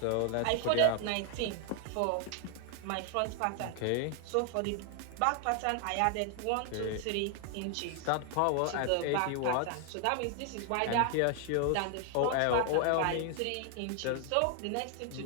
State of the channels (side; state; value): both; different; correlation 0.00